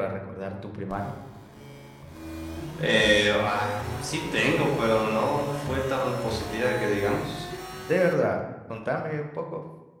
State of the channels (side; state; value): both; identical; correlation 1.00